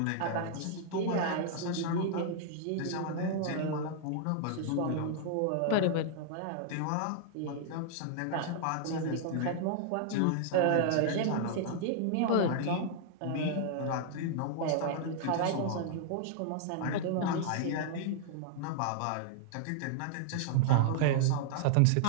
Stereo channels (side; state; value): both; different; correlation -0.01